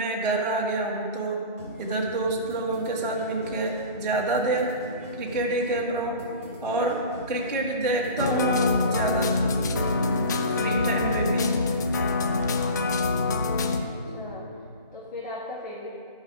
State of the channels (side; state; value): both; inverted; correlation -0.36